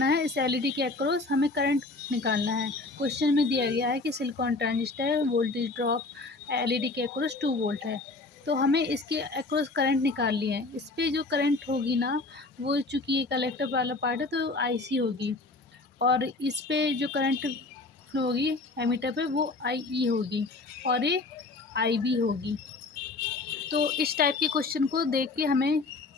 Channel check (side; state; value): right; quieter; 3.4 dB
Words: है, इस एलईडी के अक्रॉस हमें करंट निकालना है। क्वेश्चन में दिया गया है कि सिलिकॉन ट्रांजिस्टर है, वोल्टेज ड्रॉप एलईडी के अक्रॉस 2 वोल्ट है। तो हमें इसके अक्रॉस करंट निकालनी है। इस पे जो करंट होगी ना, वो चूँकि ये कलेक्टर वाला पार्ट है तो आईसी होगी और इस पे जो करंट फ्लो होगी एमीटर पे वो आईई होगी और ये आईबी होगी। तो इस टाइप के क्वेश्चन को देख के हमें